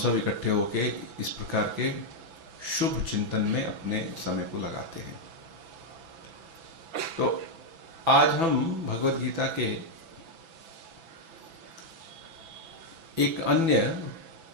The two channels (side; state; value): left; late; 6.0 ms